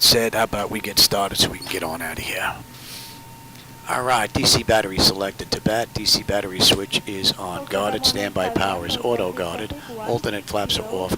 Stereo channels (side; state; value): both; identical; correlation 1.00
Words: said, how about we get started so we can get on out of here. Alright, DC battery selected to bat. DC battery switch is on guarded. Standby power is auto guarded. Alternate flaps are off